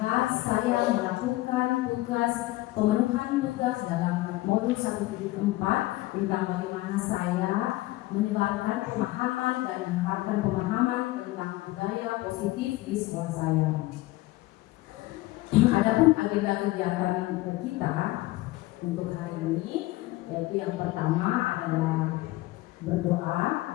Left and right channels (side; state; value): right; quieter; 18.4 dB